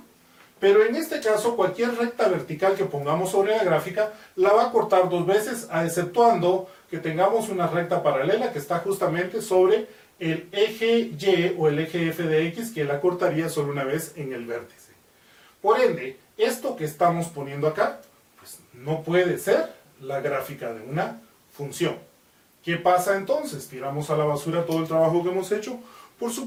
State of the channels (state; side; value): identical; both; correlation 1.00